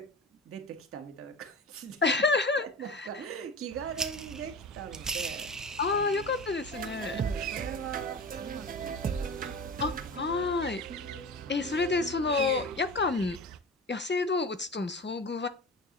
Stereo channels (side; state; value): both; normal; correlation 0.32